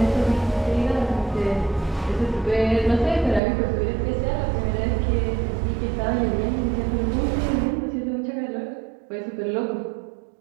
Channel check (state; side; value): drops out; left; at 3.4 s